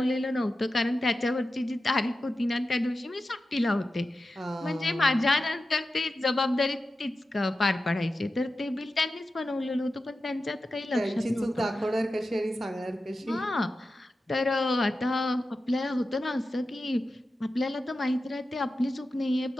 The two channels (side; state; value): both; normal; correlation 0.92